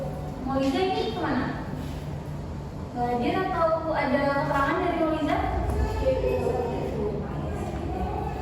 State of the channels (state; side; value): identical; both; correlation 1.00